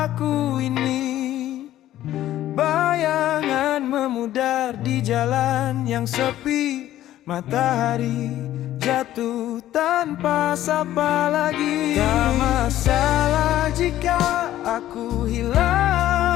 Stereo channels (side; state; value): right; quieter; 13.4 dB